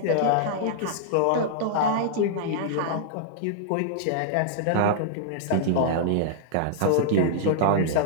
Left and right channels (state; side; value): different; both; correlation -0.01